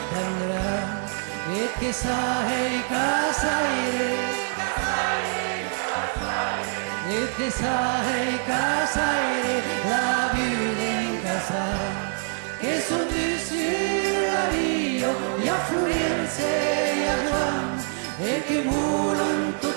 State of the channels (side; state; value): left; silent; 60 dB below the other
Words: tendrà, e che sai casaire, e che sai casaire, la vita in casa, che son dessus la via, e a Florence e a Giovanni, e che volan